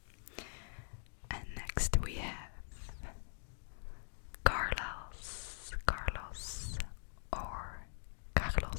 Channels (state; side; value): silent; right; digital silence